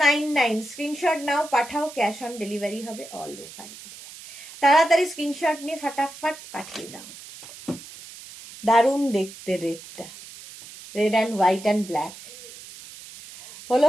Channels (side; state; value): right; noise; hiss, 16 dB below the sound